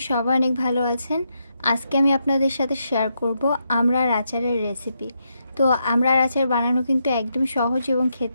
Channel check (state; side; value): inverted; both; correlation -0.81